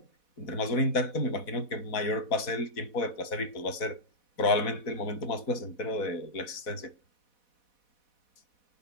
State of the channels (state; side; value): late; right; 4.1 ms